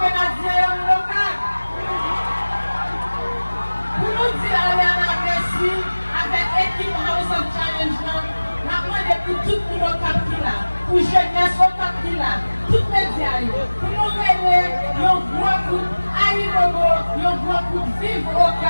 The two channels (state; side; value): inverted; both; correlation -1.00